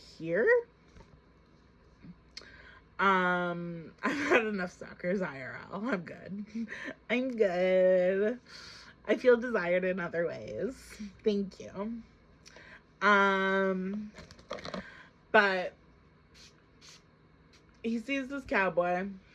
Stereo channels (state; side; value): identical; both; correlation 1.00